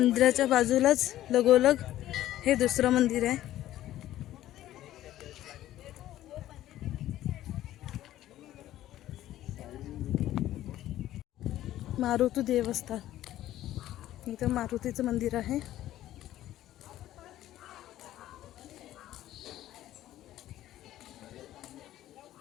बाजूलाच लगोलग हे दुसरं मंदिर आहे. मारुती देवस्थान. इथं मारुतीचं मंदिर आहे.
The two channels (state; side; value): quieter; right; 13.7 dB